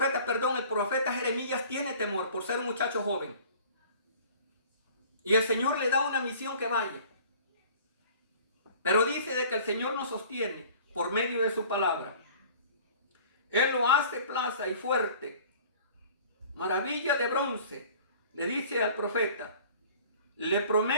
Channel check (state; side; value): inverted; both; correlation -0.48